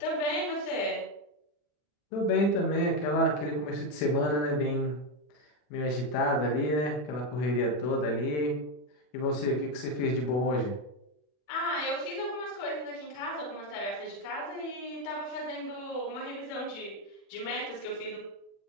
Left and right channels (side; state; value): right; late; 40 ms